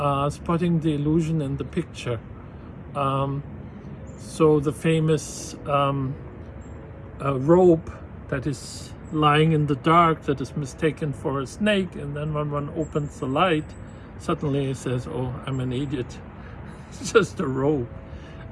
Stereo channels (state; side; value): identical; both; correlation 1.00